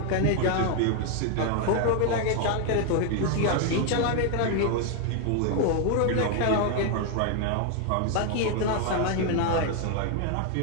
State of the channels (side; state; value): both; different; correlation 0.00